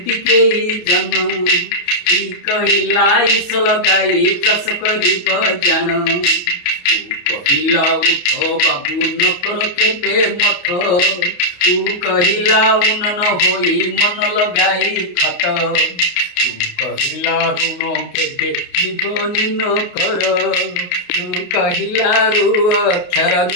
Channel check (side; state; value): right; late; 28 ms